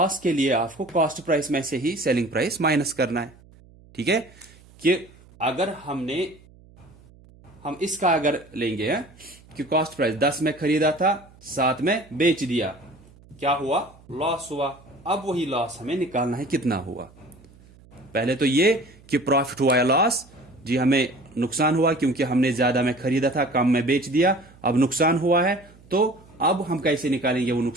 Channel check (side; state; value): right; noise; hum, 25 dB below the sound